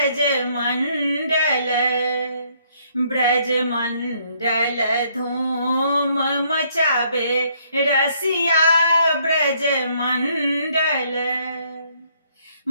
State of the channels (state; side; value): inverted; both; correlation -0.68